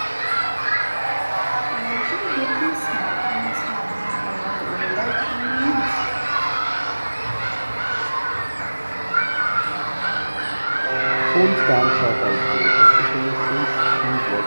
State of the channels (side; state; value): both; inverted; correlation -1.00